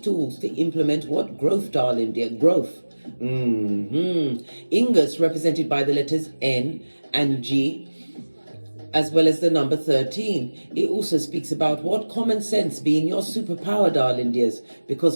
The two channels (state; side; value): inverted; both; correlation -1.00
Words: to implement what? Growth, darling dear. Growth. Ingus represented by the letters N and G, as well as the number 13. It also speaks about what? Common sense being your superpower, darling dears, because